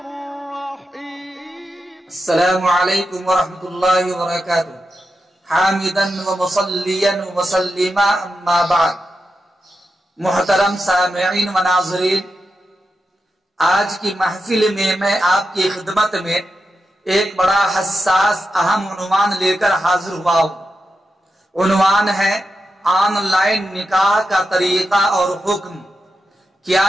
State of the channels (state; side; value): normal; both; correlation 0.88